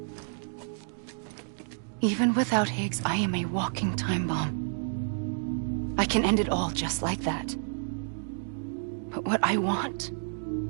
Even without Higgs, I am a walking time bomb. I can end it all just like that. But what I want,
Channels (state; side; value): silent; left; digital silence